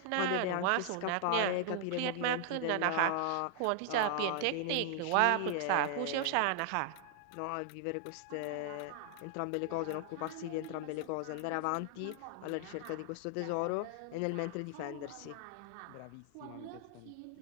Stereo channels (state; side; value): different; both; correlation 0.00